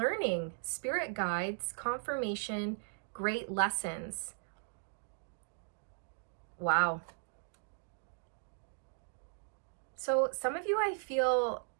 spirit guides, confirmation, great lessons. Wow. So some of you, I feel,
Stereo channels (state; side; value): silent; left; digital silence